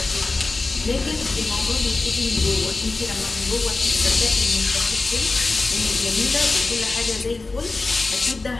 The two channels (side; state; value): right; quieter; 3.6 dB